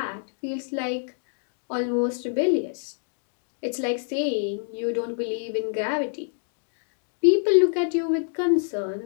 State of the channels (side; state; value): right; silent; digital silence